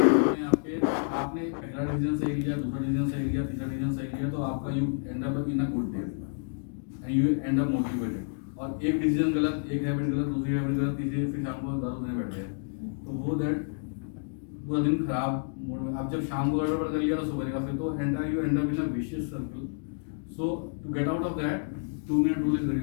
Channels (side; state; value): right; silent; digital silence